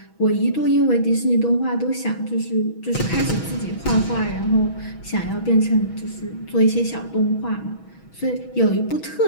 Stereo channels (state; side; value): late; right; 6.2 ms